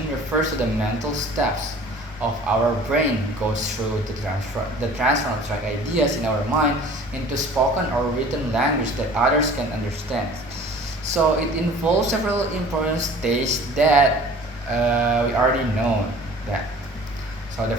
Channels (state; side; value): normal; both; correlation 0.47